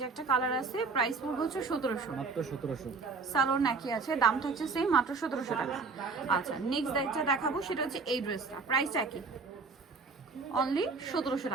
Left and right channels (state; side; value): quieter; left; 4.5 dB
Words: একটা কালার আছে, প্রাইস পড়বে হচ্ছে 1700। মাত্র 1700। সালোয়ার নাকি আছে, দাম থাকছে সেম, মাত্র 1700 টাকা। আচ্ছা, নেক্সট যেটা দেখাবো সেটা হচ্ছে এই ড্রেসটা, প্রাইসটা কি? অনলি 1700